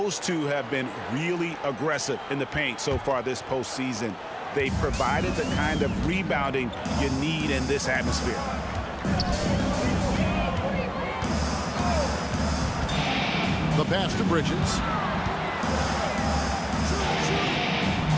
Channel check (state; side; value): identical; both; correlation 1.00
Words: two have been really aggressive in the paint so far this postseason. They provided the kind of rebounding you need in this atmosphere. The pass to Bridges.